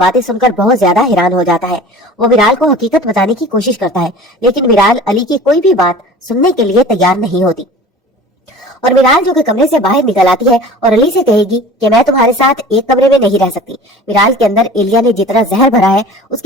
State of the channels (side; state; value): both; normal; correlation 0.42